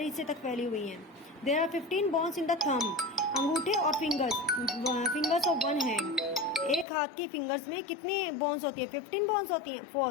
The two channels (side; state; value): right; drops out; at 6.9 s